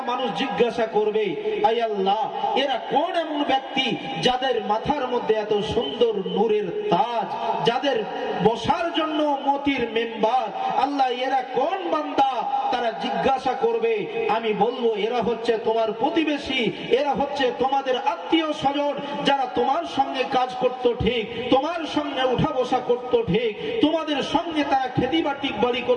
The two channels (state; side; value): identical; both; correlation 1.00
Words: মানুষ জিজ্ঞাসা করবে, আয় আল্লাহ, এরা কোন এমন ব্যক্তি যাদের মাথার মধ্যে এত সুন্দর নূরের তাজ, যাদের বসার জন্য মতির মেম্বার, আল্লাহ এরা কোন বান্দা? তারা জিজ্ঞাসা করবে, আমি বলবো এরা হচ্ছে তোমার প্রতিবেশী, এরা হচ্ছে তোমাদের আত্মীয় স্বজন, যারা তোমার সঙ্গে কাজ করতো ঠিক, তোমার সঙ্গে উঠা বসা করতো ঠিক, তোমাদের সঙ্গে তারা খেতি বাড়ি